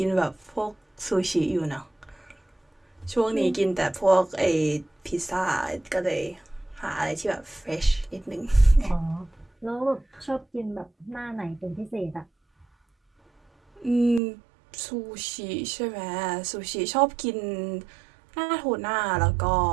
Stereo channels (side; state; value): left; drops out; at 14.2 s